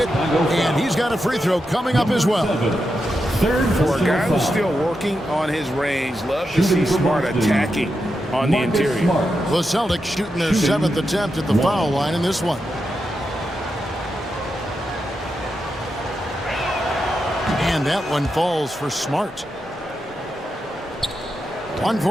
and he's got a free throw coming up as well. For a guy who's still working on his range, love to see Smart attacking on the interior. The Celtics shooting their 7th attempt at the foul line in this one. And that one falls for Smart.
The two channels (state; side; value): normal; both; correlation 0.87